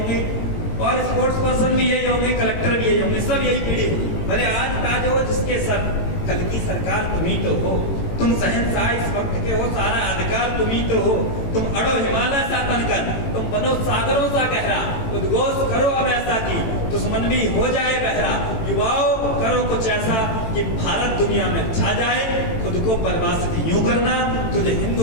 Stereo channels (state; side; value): late; right; 18 ms